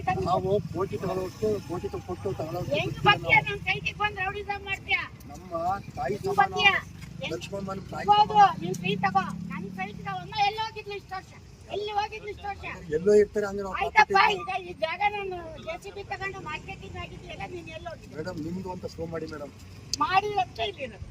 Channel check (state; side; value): identical; both; correlation 1.00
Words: ನಾವು ಕೋಟಿ ತಗೊಳ್ಳೋಷ್ಟು ಕೋಟಿ ಕೊಟ್ಟು ನಮ್ಮ ತಾಯಿ ಸಮಾನ ಲಕ್ಷ್ಮಮ್ಮನ ತಾಯಿ ಎಲ್ಲೋ ಇರ್ತಾರೆ ಅಂದ್ರೆ ಮೇಡಮ್ ನಿಮ್ದು ಅಂತ ಶೋ ಮಾಡಿ ಮೇಡಮ್.